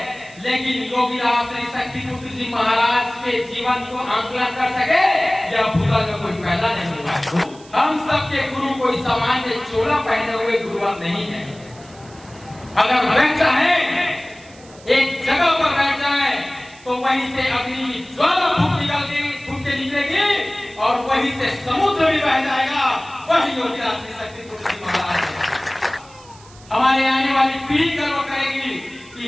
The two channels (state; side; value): noise; right; hiss, 24 dB below the sound